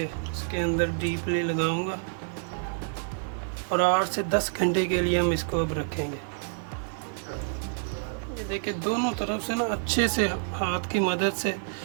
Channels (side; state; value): left; silent; 59 dB below the other